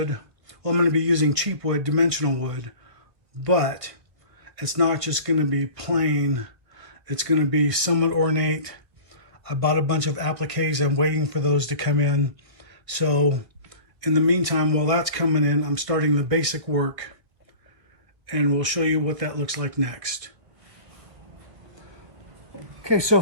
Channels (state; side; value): late; left; 1.5 ms